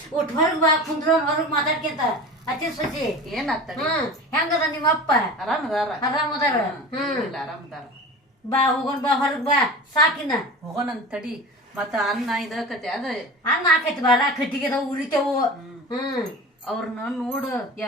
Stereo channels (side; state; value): both; normal; correlation 0.34